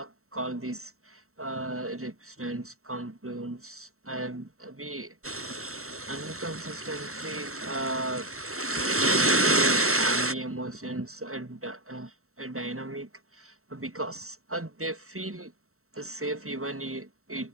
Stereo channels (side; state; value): left; late; 0.63 ms